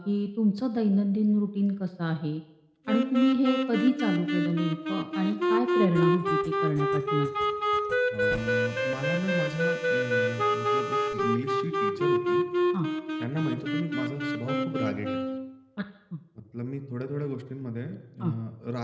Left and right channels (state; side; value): identical; both; correlation 1.00